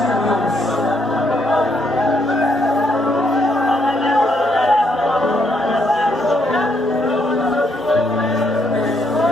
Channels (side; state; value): both; normal; correlation 0.74